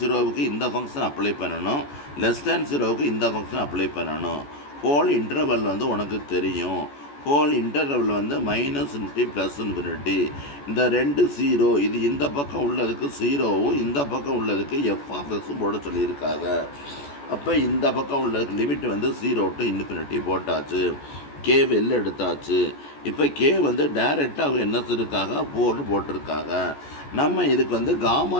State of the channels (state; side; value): late; right; 14 ms